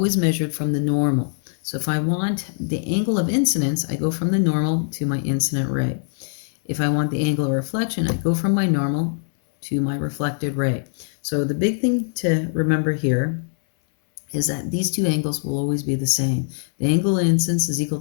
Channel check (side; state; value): right; silent; digital silence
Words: measured from the normal. So if I want the angle of incidence, I go from the normal to my incident ray. If I want the angle of reflection, I go from my normal to my reflected ray. So the big thing to remember here is that these two angles will always be the same. The angle of incidence is equal